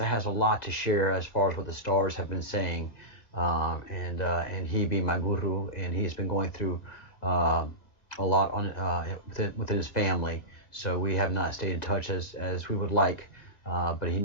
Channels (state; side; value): late; right; 1.9 ms